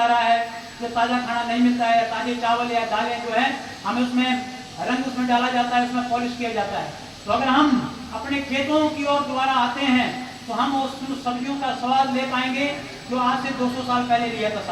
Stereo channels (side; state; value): both; identical; correlation 1.00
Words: रहा है, जो ताज़ा खाना नहीं मिलता है, ताजे चावल या दालें जो है हमें उसमें रंग उसमें डाला जाता है, उसमें पॉलिश किया जाता है। तो अगर हम अपने खेतों की ओर दोबारा आते हैं तो हम उस सब्जियों का स्वाद ले पाएंगे जो आज से 200 साल पहले लिया था